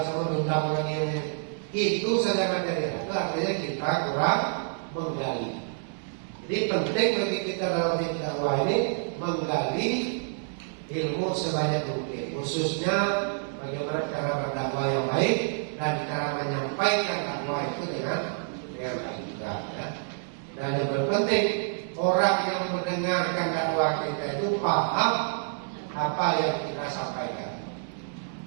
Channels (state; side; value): silent; left; 59 dB below the other